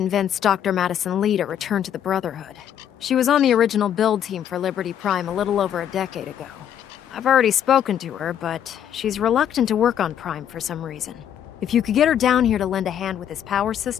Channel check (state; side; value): quieter; right; 9.7 dB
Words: Dr. Madison Lee to return to the Brotherhood. She was on the original build team for Liberty Prime a little over a decade ago. I've already spoken to her, but she's reluctant to work on Prime for some reason. If you could get her down here to lend a hand with his power